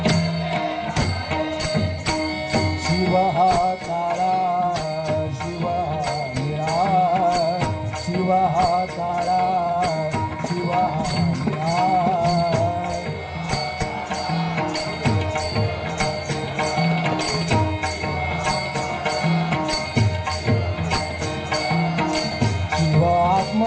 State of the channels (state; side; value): identical; both; correlation 1.00